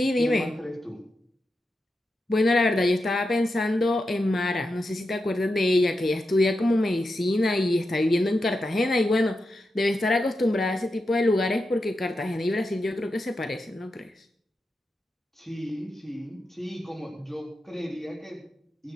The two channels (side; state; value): both; normal; correlation 0.88